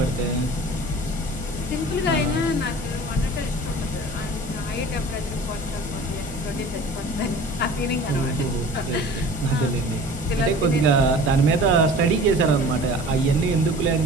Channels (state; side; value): normal; both; correlation 0.42